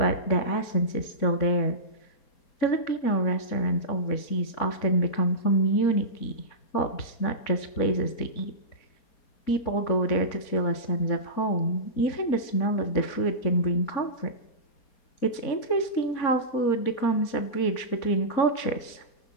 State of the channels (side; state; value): right; late; 4.3 ms